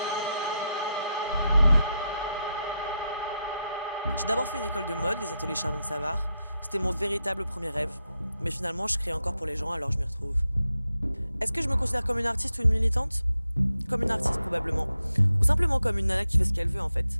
J'ai d'abord fait une école de mode, les ateliers Chardon-Savard. C'était mon véritable premier rêve. Mais finalement, je crée encore pour les gens, alors je m'y retrouve. Est-ce que je me considère comme une artiste ou une militante? Comme une artiste, probablement. Ou simplement comme une nana qui fait ce qu'elle veut, en fait.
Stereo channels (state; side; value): inverted; both; correlation -0.86